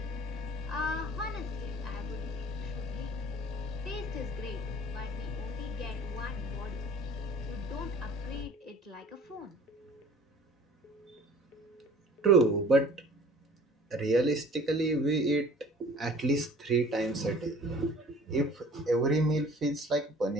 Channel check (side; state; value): both; normal; correlation 0.48